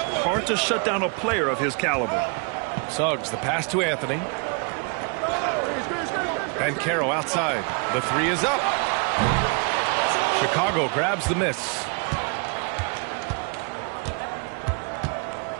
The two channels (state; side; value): quieter; left; 34.8 dB